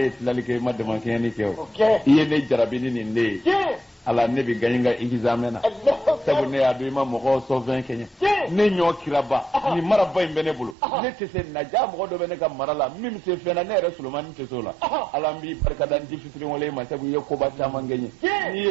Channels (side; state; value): left; drops out; at 10.8 s